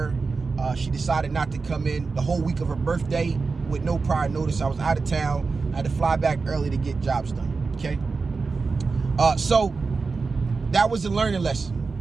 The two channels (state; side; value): quieter; left; 4.4 dB